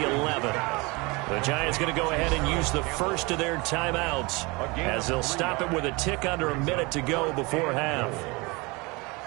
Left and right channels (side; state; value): left; quieter; 26.0 dB